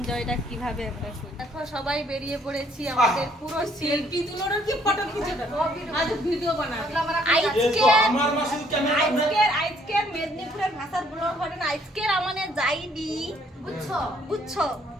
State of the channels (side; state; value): both; normal; correlation 0.65